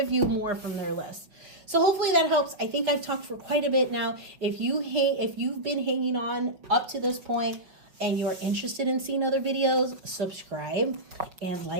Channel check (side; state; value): left; late; 5.4 ms